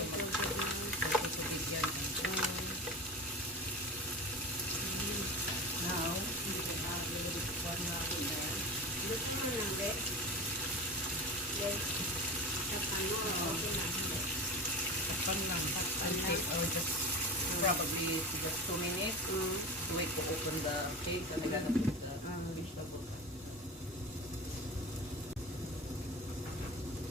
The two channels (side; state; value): both; normal; correlation 0.29